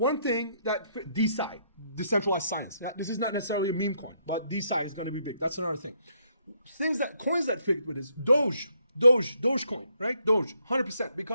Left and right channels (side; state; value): both; inverted; correlation -0.73